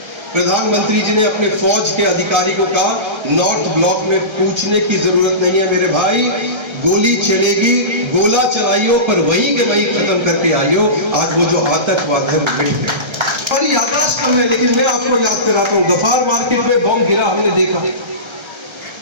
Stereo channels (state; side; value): late; left; 1.3 ms